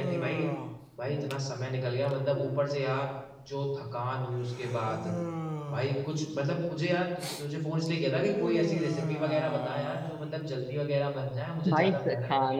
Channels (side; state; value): both; identical; correlation 1.00